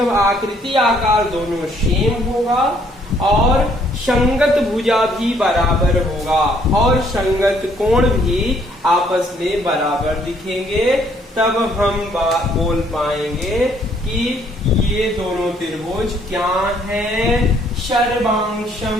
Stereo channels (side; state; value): both; normal; correlation 0.65